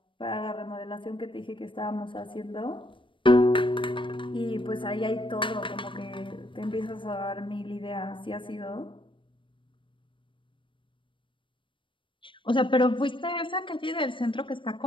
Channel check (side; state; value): right; late; 0.25 ms